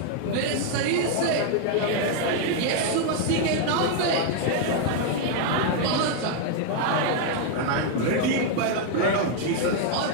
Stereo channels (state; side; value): different; both; correlation 0.00